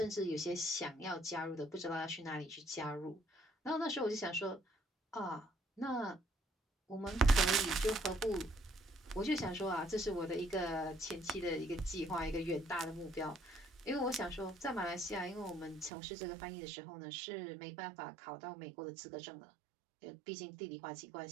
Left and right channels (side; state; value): left; drops out; at 15.9 s